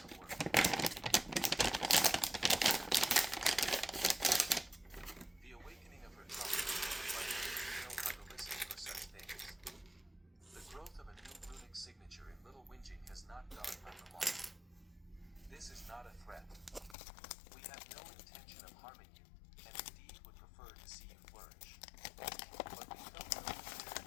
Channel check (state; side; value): drops out; right; at 16.9 s